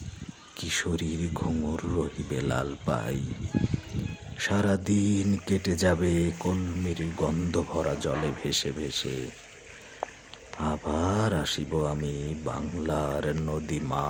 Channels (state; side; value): identical; both; correlation 1.00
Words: কিশোরীর ঘুঙুর রহিবে লাল পাই। সারাদিন কেটে যাবে কলমির গন্ধ ভরা জলে ভেসে ভেসে। আবার আসিব আমি বাংলার নদী